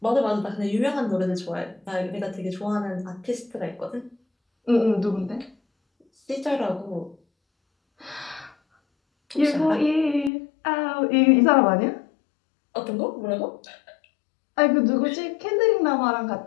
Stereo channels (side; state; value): right; drops out; at 10.3 s